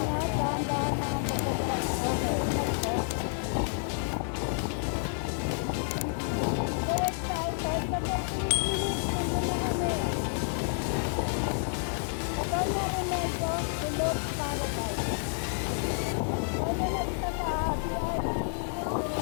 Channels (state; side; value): silent; right; digital silence